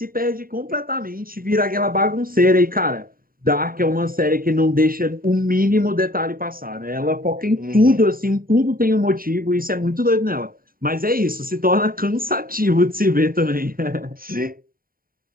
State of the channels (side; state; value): left; late; 0.42 ms